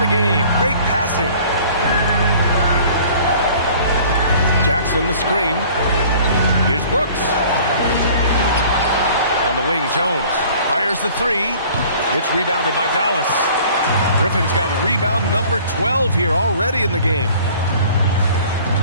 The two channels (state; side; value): inverted; both; correlation -0.50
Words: game. Great passing. Jackson the screen. Here's Brooks. On the wing, Jones fires the three. It's rebounded by Dallas. Griffin's got rebound number 12 here already in the game.